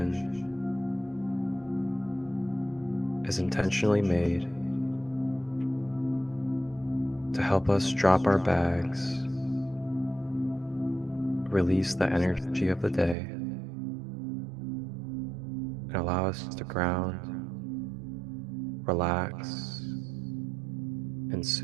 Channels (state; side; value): drops out; left; at 13.2 s